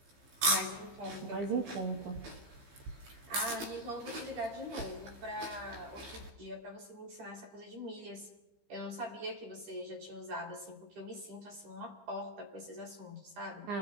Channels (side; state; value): left; late; 15 ms